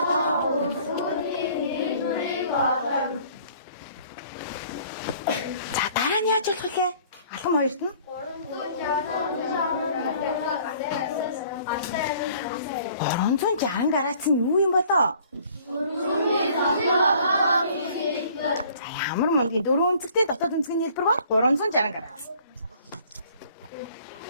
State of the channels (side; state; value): both; inverted; correlation -0.55